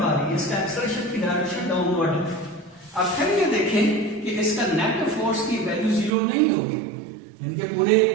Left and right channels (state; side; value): drops out; left; at 6.2 s